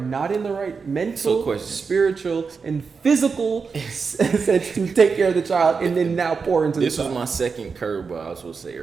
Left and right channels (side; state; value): left; quieter; 5.2 dB